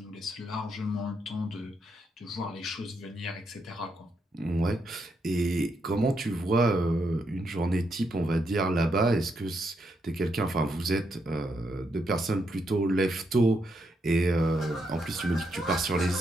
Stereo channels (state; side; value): normal; both; correlation 0.79